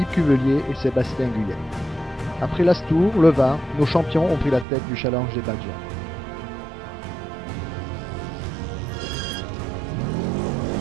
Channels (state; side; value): drops out; left; at 4.7 s